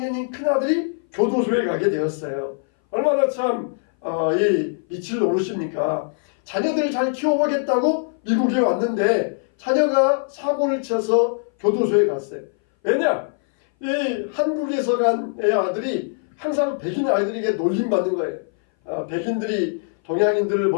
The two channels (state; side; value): silent; right; 60 dB below the other